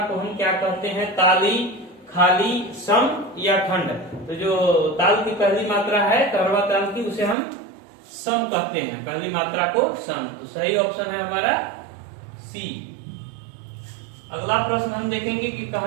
को हम क्या कहते हैं? ताली, खाली, सम या खंड? तो जो ताल की पहली मात्रा है कहरवा ताल की, उसे हम सम कहते हैं। पहली मात्रा को सम। तो सही ऑप्शन है हमारा सी। अगला प्रश्न हम देखेंगे कि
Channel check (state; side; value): drops out; left; at 7.4 s